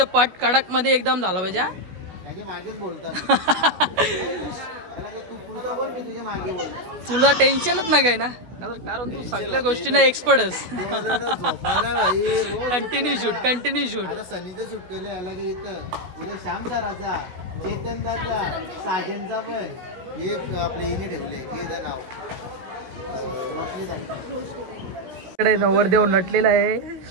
पट कडक मध्ये एकदम झाला पाहिजे. मागेच बोलतात. तुला टेन्शनच नाही काय ना कारण तू सगळ्या गोष्टींना एक्सपर्टच. Continue shoot. आता सनीचं शूट केलं याला की इथं. उद्या श्याम सराचा, चेतन दाचा, साजनचा पण एक आपल्या इने ठेवले. ते नाव इकडे नवरदेव नटलेला आहे.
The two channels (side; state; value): left; late; 16 ms